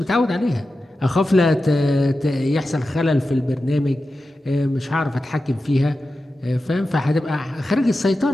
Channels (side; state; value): both; normal; correlation 0.92